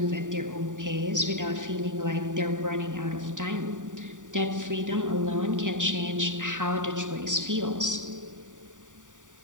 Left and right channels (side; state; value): left; late; 0.87 ms